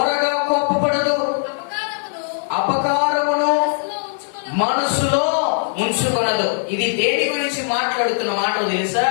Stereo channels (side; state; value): right; silent; 66 dB below the other